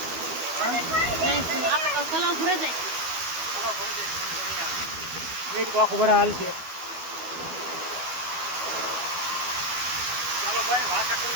આખો બરા હાલ છે. ચાલો ભાઈ વાસણ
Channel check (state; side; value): late; left; 12 ms